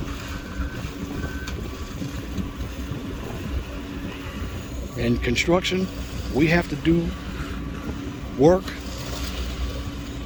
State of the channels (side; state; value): both; identical; correlation 1.00